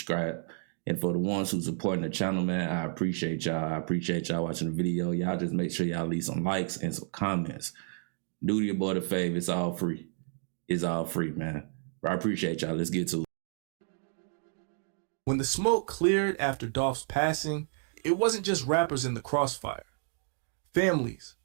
And for the ones who supporting the channel, man, I appreciate y'all. I appreciate y'all watching the video. Y'all just make sure y'all leave some likes and some comments. Do your boy the favor. It's all free. It's all free, man. But I appreciate y'all. Let's get to it. When the smoke cleared after Dolph's passing, it wasn't just rappers in the crossfire. Families,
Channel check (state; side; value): silent; left; 57 dB below the other